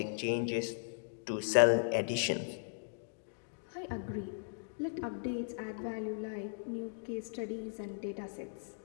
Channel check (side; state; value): right; silent; digital silence